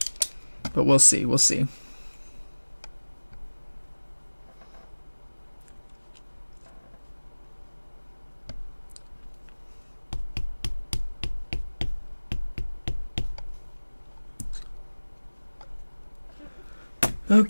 But we'll see. We'll see.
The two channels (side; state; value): both; inverted; correlation -1.00